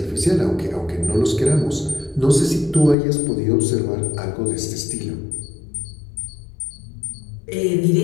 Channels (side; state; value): right; drops out; at 3.0 s